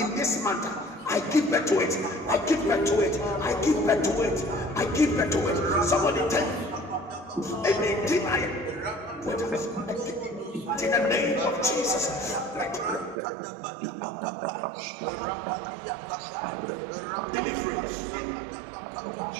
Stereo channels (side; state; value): left; drops out; at 13.2 s